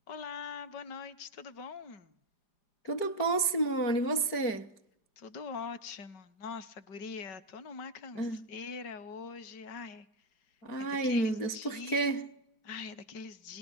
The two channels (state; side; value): late; right; 4.5 ms